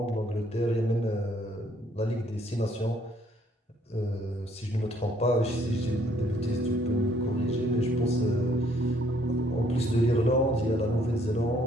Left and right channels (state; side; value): normal; both; correlation 0.65